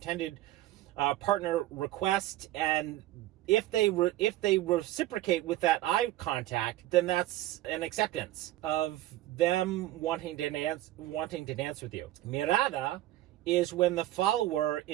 partner request, and if they reciprocate with that eye contact, then that's an acceptance of them wanting to dance with you. Mirada is when the follower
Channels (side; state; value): left; quieter; 15.3 dB